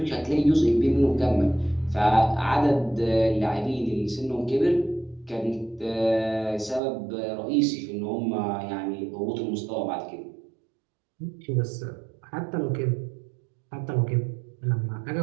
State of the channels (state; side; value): drops out; left; at 6.8 s